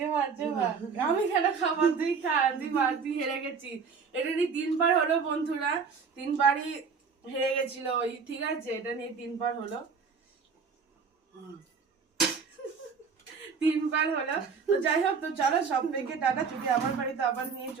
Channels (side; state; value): left; quieter; 5.5 dB